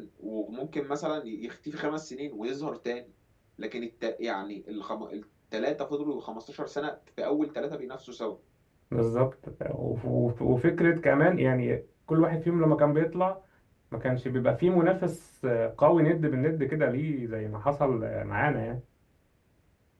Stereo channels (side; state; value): both; identical; correlation 1.00